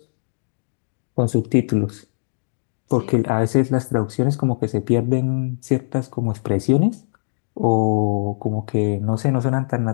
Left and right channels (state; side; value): silent; right; 65 dB below the other